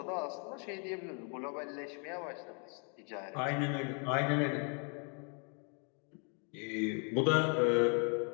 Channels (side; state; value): right; quieter; 39.1 dB